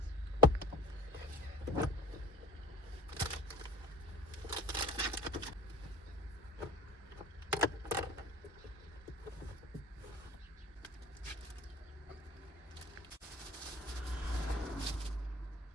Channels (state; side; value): normal; both; correlation 0.41